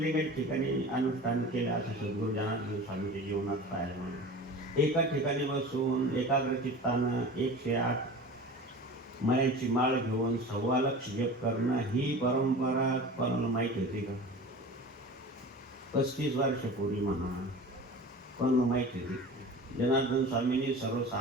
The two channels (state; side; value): normal; both; correlation 0.36